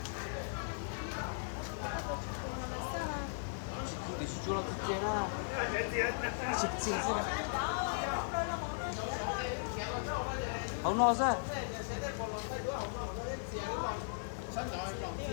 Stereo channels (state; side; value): silent; right; digital silence